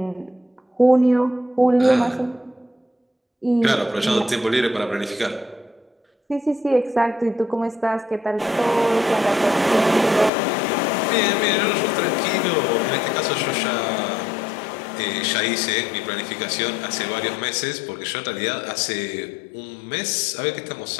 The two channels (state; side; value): drops out; right; at 10.3 s